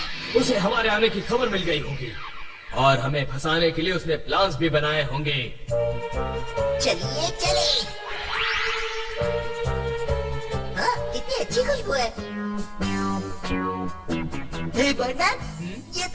उसे हमारे आने की खबर मिल गई होगी और हमें फंसाने के लिए उसने प्लान्स भी बनाए होंगे। चलिए चले। हाँ, कितनी अच्छी खुशबू है। हे परमैन, ये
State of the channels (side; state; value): both; identical; correlation 1.00